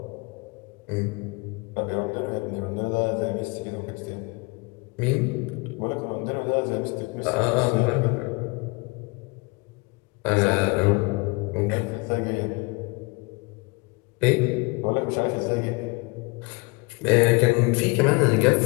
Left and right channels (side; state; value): right; quieter; 28.4 dB